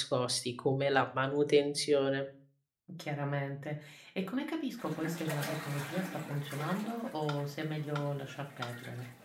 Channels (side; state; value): both; identical; correlation 1.00